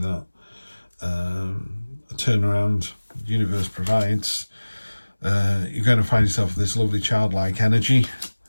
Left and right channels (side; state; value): both; inverted; correlation -1.00